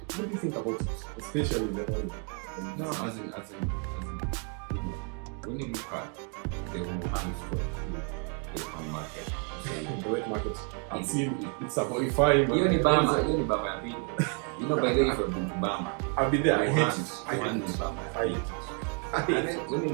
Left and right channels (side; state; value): left; quieter; 38.7 dB